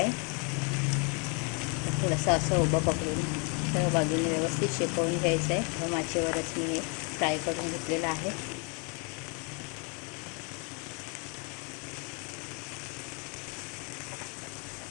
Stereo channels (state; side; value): quieter; right; 34.9 dB